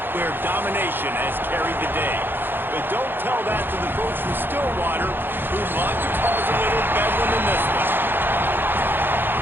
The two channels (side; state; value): left; late; 0.099 ms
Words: where domination has carried the day. But don't tell that to the folks from Stillwater who love to cause a little bedlam in this one.